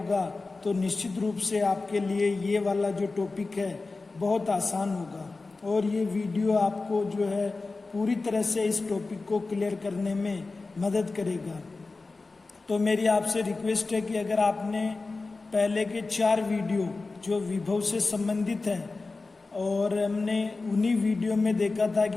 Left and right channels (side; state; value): right; quieter; 3.7 dB